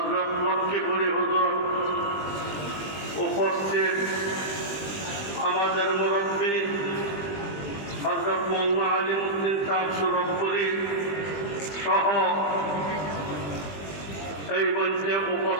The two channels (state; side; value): late; right; 20 ms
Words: লক্ষ্মীপুরী হুজুর, উপস্থিত আমাদের মুরব্বী হযরত মওলানা আলিমউদ্দিন সাহেব সুরতপুরী সহ এই মঞ্চে